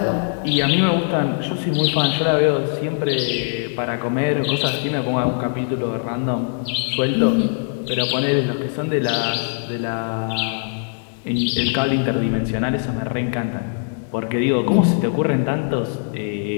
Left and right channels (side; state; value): right; silent; digital silence